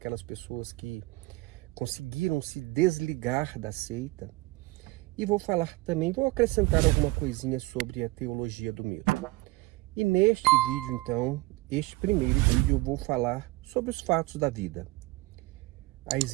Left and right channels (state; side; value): quieter; left; 21.6 dB